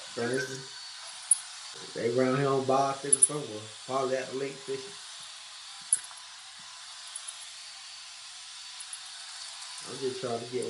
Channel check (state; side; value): identical; both; correlation 1.00